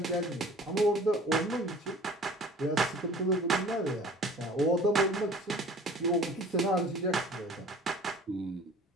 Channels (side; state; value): both; normal; correlation 0.47